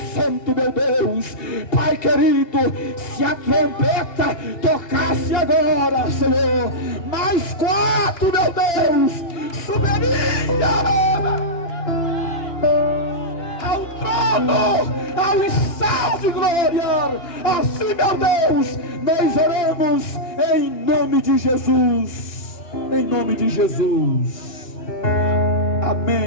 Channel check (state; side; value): late; right; 2.9 ms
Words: santo, meu Deus. Pai querido, se a trombeta tocasse agora, Senhor, mais 4, meu Deus, subiria ao trono, ao estado de glória. Assim, meu Deus, nós oramos em nome de Jesus. Em nome de Jesus.